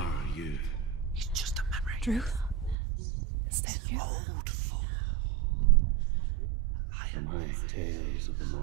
you? It's just a memory. Druth? Is that you? Around you now. For my tales of the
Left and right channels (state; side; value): drops out; left; at 2.8 s